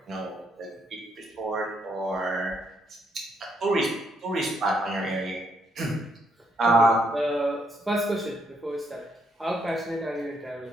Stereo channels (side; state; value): both; normal; correlation 0.74